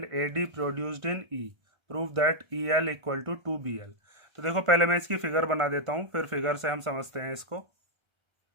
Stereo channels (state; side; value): late; left; 1.5 ms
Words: A D produced in E. Prove that E L equal to 2BL। तो देखो पहले मैं इसकी figure बना देता हूँ, फिर figure से हम समझते हैं इसको।